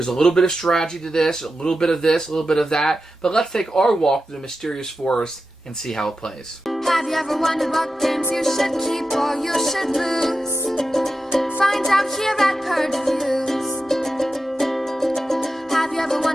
a little bit of strategy to this, a little bit of this, a little bit of that, but let's take our walk through the Mysterious Forest and see how it plays. Have you ever wondered what games you should keep or you should lose? Find out here at Purge Reviews. Have you ever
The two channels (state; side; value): normal; both; correlation 0.91